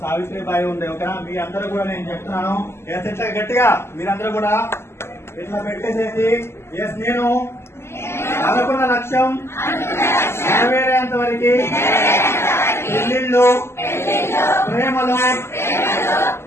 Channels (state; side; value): late; right; 0.12 ms